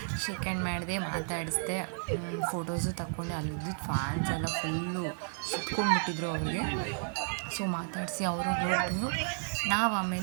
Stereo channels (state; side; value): silent; left; 56 dB below the other